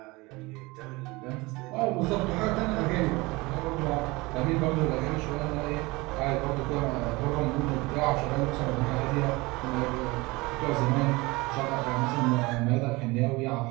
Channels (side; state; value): left; quieter; 23.1 dB